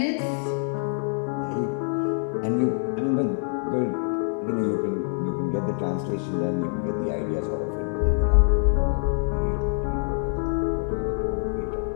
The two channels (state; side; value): silent; right; 61 dB below the other